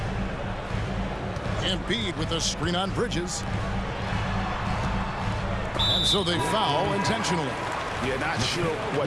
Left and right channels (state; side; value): identical; both; correlation 1.00